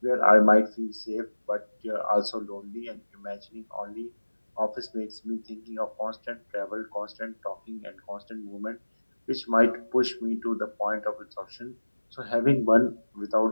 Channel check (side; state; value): both; inverted; correlation -1.00